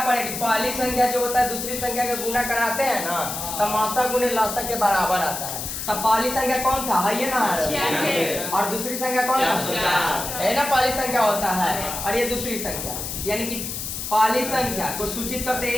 पहली संख्या जो होता है दूसरी संख्या का गुना कराते हैं ना, तो मासा गुने लसा के बराबर आता है। तब पहली संख्या कौन था, है ये ना, और दूसरी संख्या कौन था, है ना, पहली संख्या होता है और ये दूसरी संख्या। यानी कि पहली संख्या को सूचित करते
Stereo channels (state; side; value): noise; left; hiss, 5 dB below the sound